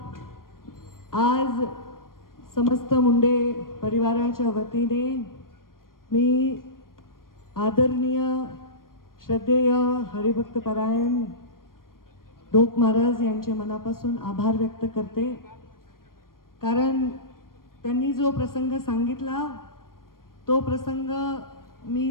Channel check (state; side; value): late; right; 0.91 ms